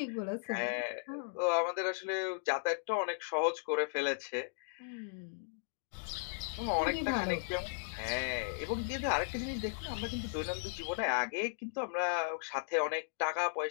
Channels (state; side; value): silent; right; digital silence